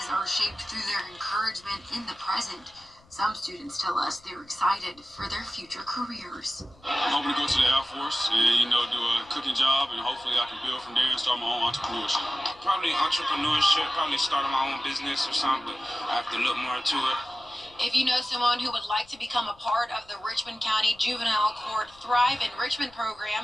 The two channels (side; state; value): left; noise; rumble, 28 dB below the sound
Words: are shaped through their encouragement in the present. Some students tell us they're excited for their future careers. I'm hoping to go to the Air Force and, do a cooking job, and hopefully I can build from there and start my own entrepreneurship. Probably entrepreneurship, probably starting my own business or something. I have to look more into it. If you know someone who would like to become a part of the Richmond County Juvenile Court Thrive in Richmond